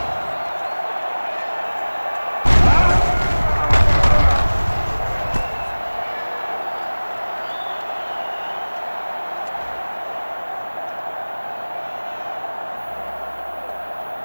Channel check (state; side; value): inverted; both; correlation -1.00